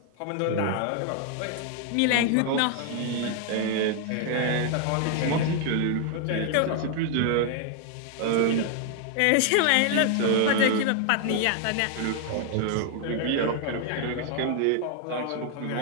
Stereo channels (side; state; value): both; different; correlation 0.00